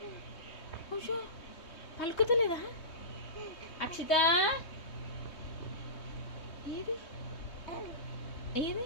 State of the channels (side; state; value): right; late; 3.2 ms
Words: పలుకుతలేదా? అక్షిత ఏది ఏది?